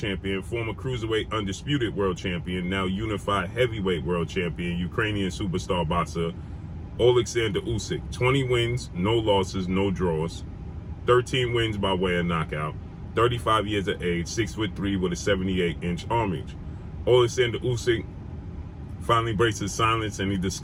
former cruiserweight undisputed world champion, now unified heavyweight world champion, Ukrainian superstar boxer, Oleksandr Usyk. 20 wins, no losses, no draws, 13 wins by way of knockout. 35 years of age, 6'3" with a 78-inch arm reach. Oleksandr Usyk finally breaks his silence and he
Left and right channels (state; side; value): identical; both; correlation 1.00